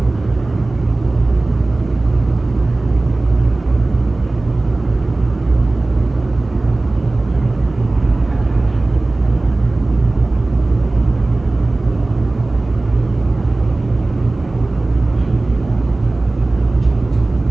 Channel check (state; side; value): quieter; left; 3.0 dB